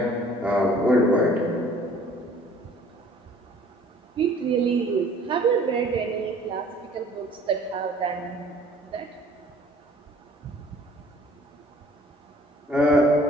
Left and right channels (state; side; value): normal; both; correlation 0.54